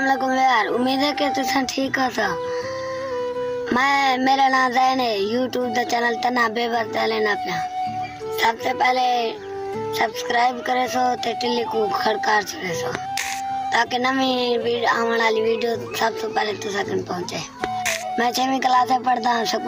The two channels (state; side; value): identical; both; correlation 1.00